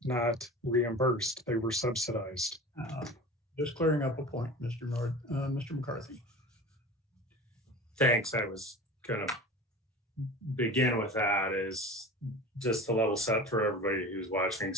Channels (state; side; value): normal; both; correlation 0.35